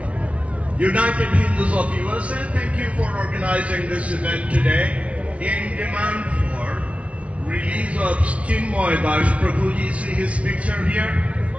United Hindus of USA, thank you for organizing this event today in demand for release of Chinmoy Das Prabhuji. See his picture here?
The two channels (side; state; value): left; late; 0.064 ms